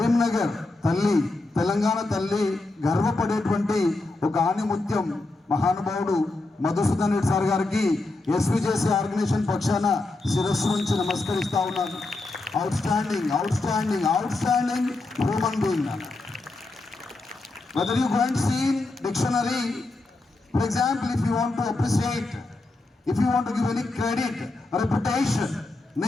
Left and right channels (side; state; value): right; quieter; 3.1 dB